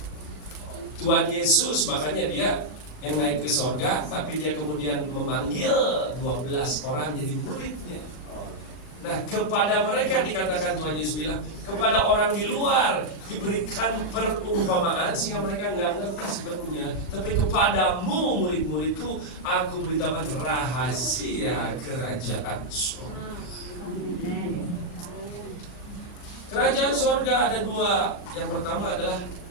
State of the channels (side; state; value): right; late; 39 ms